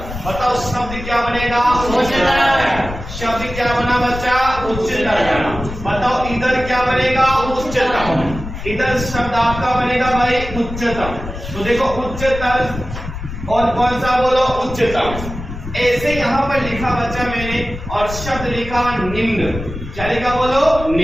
बताओ शब्द क्या बनेगा, उच्चतर। शब्द क्या बना बच्चा, उच्चतर बना। बताओ इधर क्या बनेगा, उच्चतम। इधर शब्द आपका बनेगा भाई उच्चतम। तो देखो उच्चतर और कौन सा बोलो, उच्चतम। ऐसे यहाँ पर लिखा बच्चा मैंने और शब्द लिखा निम्न। क्या लिखा बोलो,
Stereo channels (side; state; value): left; noise; rumble, 9 dB below the sound